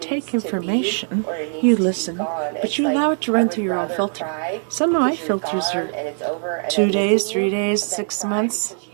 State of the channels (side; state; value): left; silent; 65 dB below the other